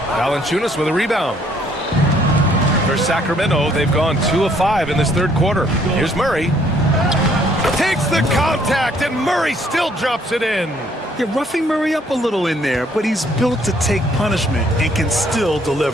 Valanciunas with a rebound. For Sacramento, they've gone 2 of 5 in this third quarter. Here's Murray. Takes the contact, and Murray still drops it in. You're roughing Murray up a little in there, but he's built to take punishment and can still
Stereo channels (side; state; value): both; normal; correlation 0.65